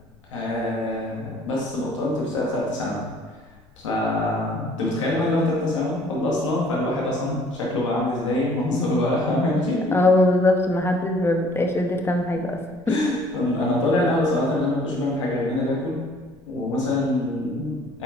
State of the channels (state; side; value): noise; left; rumble, 28 dB below the sound